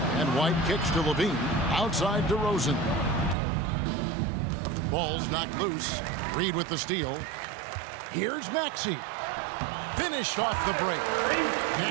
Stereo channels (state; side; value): drops out; left; at 3.4 s